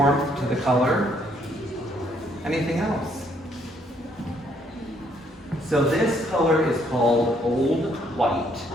to the color. Anything else? So this color is called Old White.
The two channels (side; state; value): both; normal; correlation 0.68